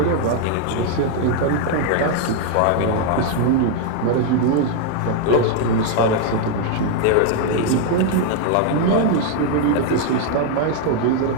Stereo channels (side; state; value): both; different; correlation 0.00